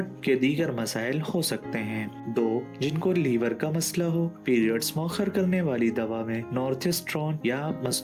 के दीगर मसाइल हो सकते हैं। 2, जिनको लीवर का मसला हो। पीरियड्स मौखर करने वाली दवा में नोरेथिस्ट्रोन या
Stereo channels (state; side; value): identical; both; correlation 1.00